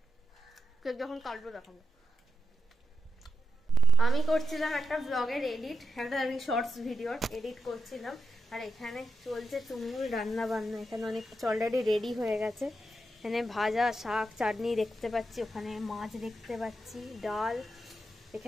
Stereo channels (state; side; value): normal; both; correlation 0.85